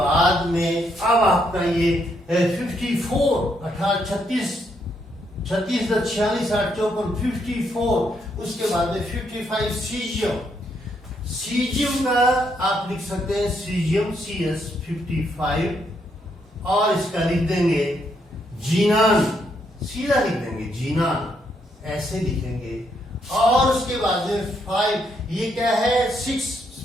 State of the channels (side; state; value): both; normal; correlation 0.75